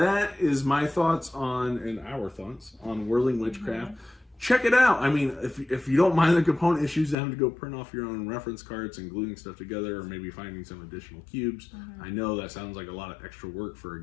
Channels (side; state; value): right; drops out; at 7.2 s